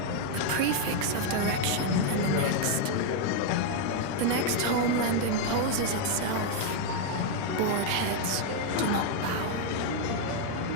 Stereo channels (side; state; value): both; different; correlation 0.00